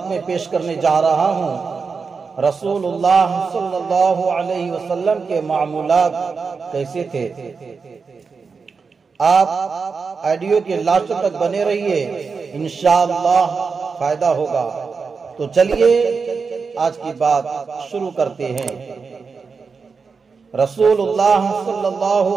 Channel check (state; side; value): quieter; left; 5.1 dB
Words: میں پیش کرنے جا رہا ہوں رسول اللہ صلی اللہ علیہ وسلم کے معمولات کیسے تھے۔ آپ آڈیو کے لاسٹ تک بنے رہیے، انشاءاللہ فائدہ ہوگا۔ تو چلیے آج کی بات شروع کرتے ہیں۔ رسول اللہ صلی اللہ